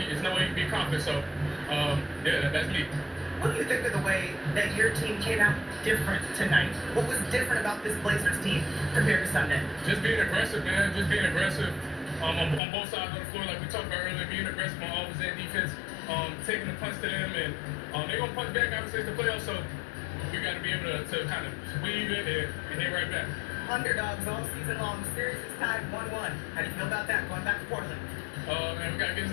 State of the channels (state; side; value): drops out; right; at 12.6 s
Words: there's no way you can be confident, so yeah, that's me. What do you think of the way that your team came out different tonight? What was different about this Blazers team compared to Sunday? Just being aggressive, man. Just being aggressive on both sides of the floor, like we talked about earlier. Being aggressive on offense and defense, taking the punch to them, and they're gonna punch back. Obviously, it's the playoffs, so we got to be able to kind of weave it and hit right back. Underdogs all season long. Series is tied 1-1. How do you feel about that? Going back to Portland. And we gotta get